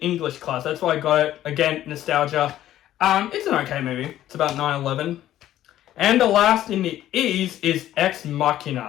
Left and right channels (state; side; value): quieter; right; 12.9 dB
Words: class. That's why I got it. Again, nostalgia. It's an okay movie. It's about 9/11. And the last in the E's is Ex